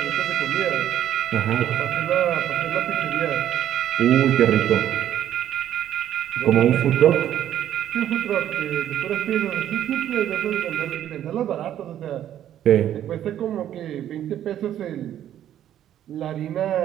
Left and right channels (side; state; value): left; quieter; 11.1 dB